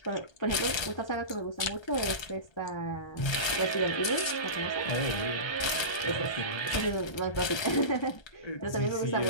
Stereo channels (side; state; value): right; late; 1.3 ms